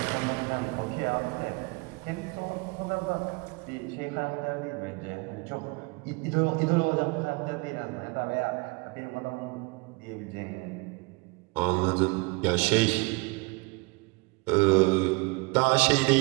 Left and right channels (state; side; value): quieter; left; 27.9 dB